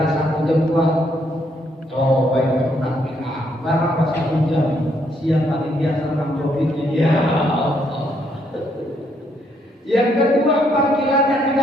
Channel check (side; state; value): both; normal; correlation 0.72